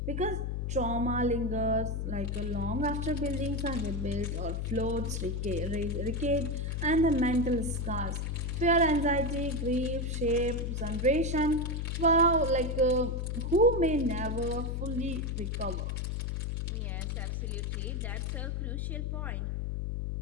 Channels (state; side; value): noise; left; hum, 1 dB below the sound